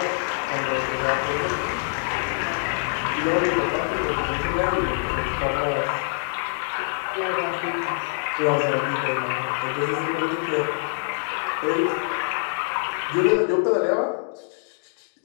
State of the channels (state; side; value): silent; right; digital silence